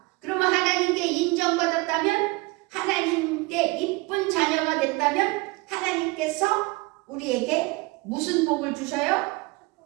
그러면 하나님께 인정받았다면, 하나님께 이쁜 자녀가 됐다면 하나님께서 우리에게 무슨 복을 주셔요?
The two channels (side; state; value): left; quieter; 24.6 dB